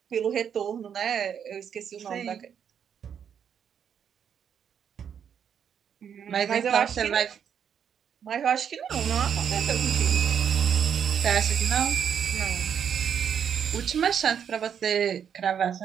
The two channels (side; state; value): left; quieter; 8.1 dB